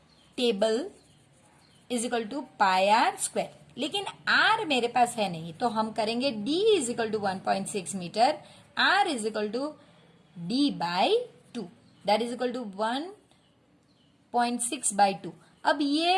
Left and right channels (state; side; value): identical; both; correlation 1.00